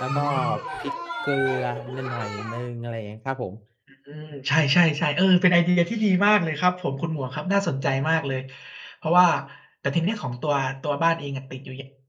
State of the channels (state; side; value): identical; both; correlation 1.00